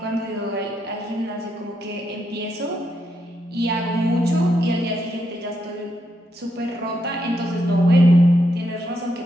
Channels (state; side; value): normal; both; correlation 0.80